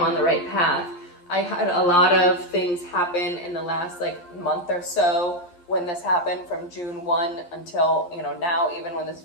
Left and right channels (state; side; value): late; right; 11 ms